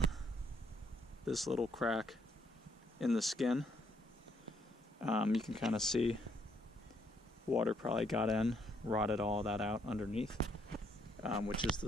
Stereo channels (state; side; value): normal; both; correlation 0.70